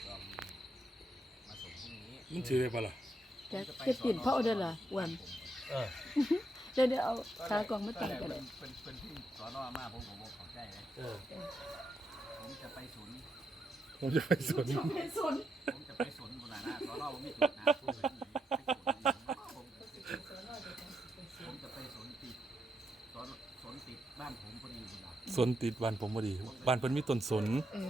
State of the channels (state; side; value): normal; both; correlation 0.81